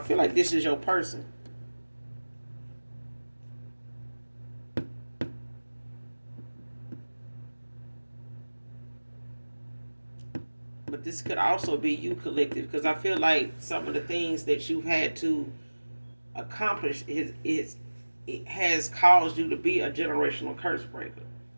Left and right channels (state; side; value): inverted; both; correlation -1.00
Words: like this is your person. But this could also be you, collective, because I feel like some of the things that you've had to accomplish it has caused you to be a generational curse breaker